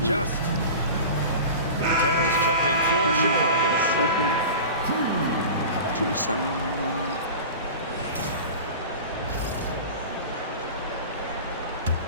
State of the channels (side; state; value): both; inverted; correlation -0.34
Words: Terry's checked in for Chicago. 2-7-1.